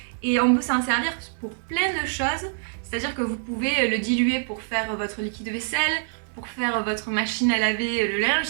et on peut s'en servir pour plein de choses. C'est-à-dire que vous pouvez le diluer pour faire votre liquide vaisselle, pour faire votre machine à laver le linge.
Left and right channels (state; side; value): silent; left; digital silence